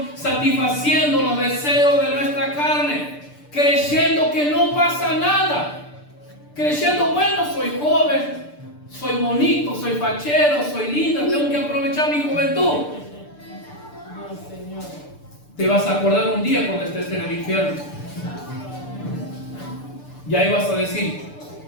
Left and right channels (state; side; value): late; right; 6.8 ms